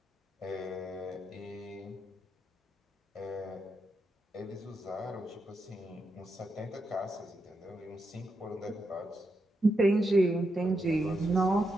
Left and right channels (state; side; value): normal; both; correlation 0.84